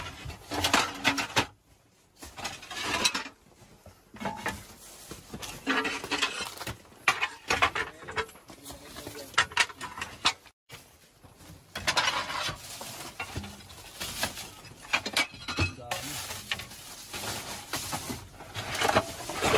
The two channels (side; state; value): both; identical; correlation 1.00